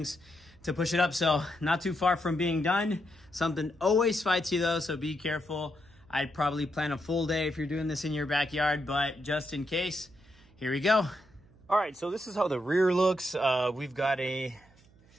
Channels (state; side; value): noise; right; hum, 28 dB below the sound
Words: to push it up. So not too far from being done. Something always fights you though, so be careful. I'd probably plan a full day if you're doing this in your backyard, but just in case, here we go. All right, so this is how the rear looks. We've got a,